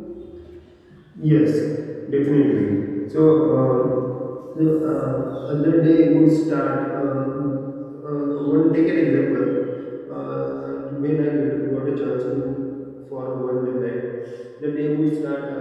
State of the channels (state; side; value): identical; both; correlation 1.00